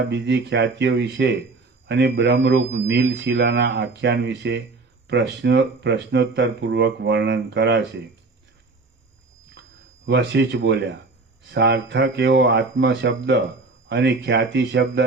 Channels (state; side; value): quieter; left; 3.7 dB